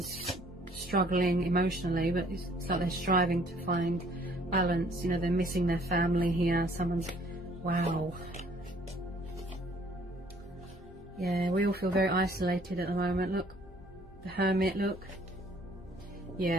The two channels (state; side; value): normal; both; correlation 0.59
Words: struggling emotionally, but it's like they're striving to find balance. You know, they're missing their family here. Someone's, wow. Yeah, we all feel very isolated at the moment. Look, the Hermit, look.